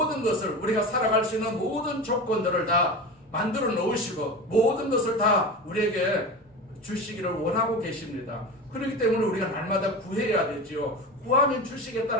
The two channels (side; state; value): both; normal; correlation 0.28